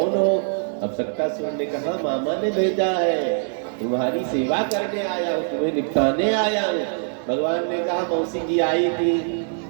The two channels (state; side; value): silent; left; digital silence